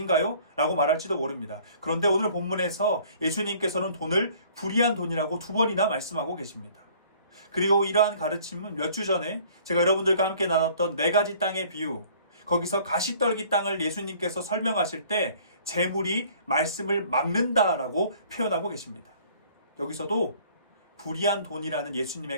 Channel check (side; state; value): both; inverted; correlation -0.54